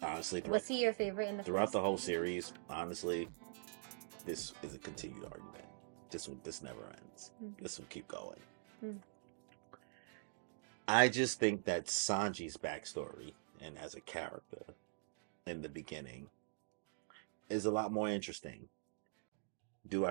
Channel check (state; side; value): silent; left; digital silence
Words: honestly, Was he your favorite in the throughout first? the whole series, honestly, this is a continued argument. This never ends. This will keep going. I just think that Sanji's backstory and as a character in the beginning is a lot more interesting. Do I